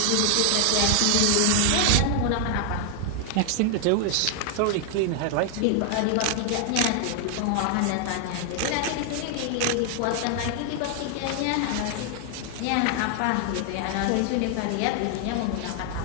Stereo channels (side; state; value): both; different; correlation 0.00